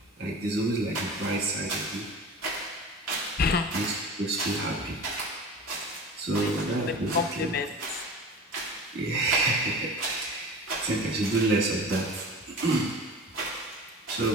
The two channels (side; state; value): both; normal; correlation 0.35